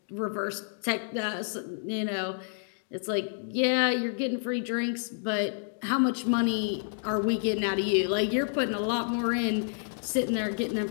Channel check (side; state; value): right; silent; digital silence